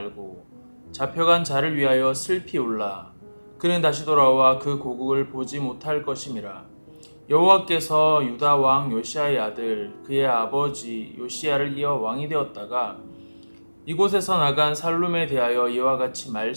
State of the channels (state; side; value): inverted; both; correlation -1.00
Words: 잡혀간 자를 위하여 슬피 울라. 그는 다시 돌아와 그 고국을 보지 못할 것임이라. 여호와께서 유다 왕 요시야의 아들 그의 아버지 요시야를 이어 왕이 되었다가 이곳에서 나간 살룸에 대하여 이와 같이